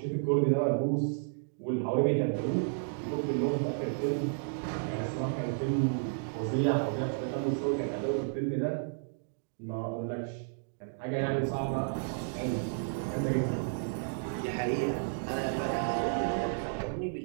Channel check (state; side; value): silent; left; digital silence